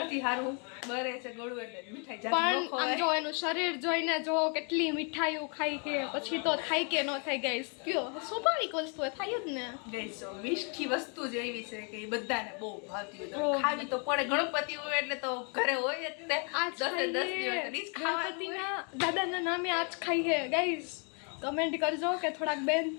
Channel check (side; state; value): right; quieter; 37.6 dB